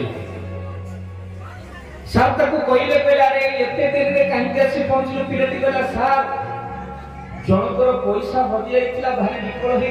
ସାର୍ ତାକୁ କହିଲେ ଆରେ ଏତେ ଡେରିରେ କାହିଁକି ଆସି ପହଞ୍ଚିଲ? ପିଲାଟି କହିଲା ସାର୍ ଜଣଙ୍କର ପଇସା ହଜି ଯାଇଥିଲା, ଭାରି ବିକଳ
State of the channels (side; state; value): both; identical; correlation 1.00